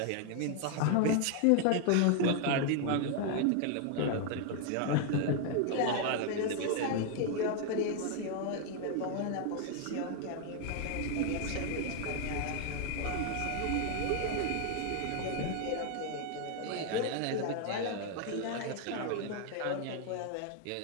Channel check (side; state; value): both; different; correlation 0.00